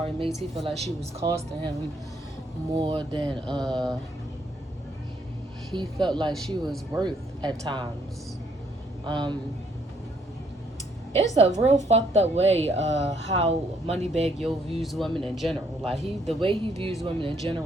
made. He felt like she was costing him more than he felt like she was worth at times. It's a real fucked up way how Moneybagg Yo views women in general. Like the way he views women in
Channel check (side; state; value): both; normal; correlation 0.69